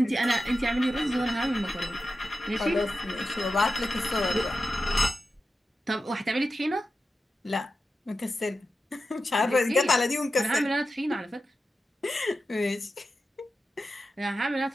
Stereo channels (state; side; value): normal; both; correlation 0.91